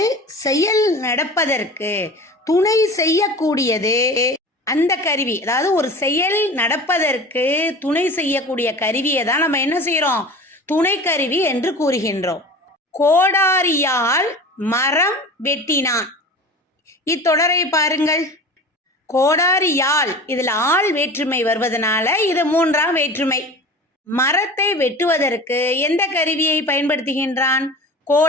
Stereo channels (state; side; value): normal; both; correlation 0.36